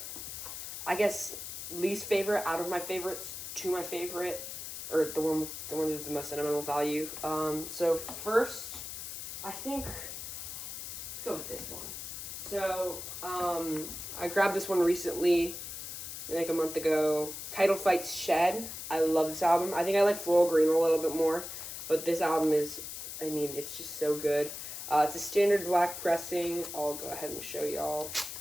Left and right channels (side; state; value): left; noise; hiss, 8 dB below the sound